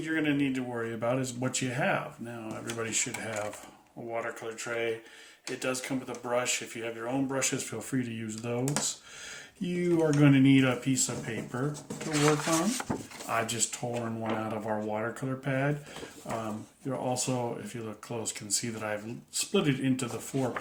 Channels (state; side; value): identical; both; correlation 1.00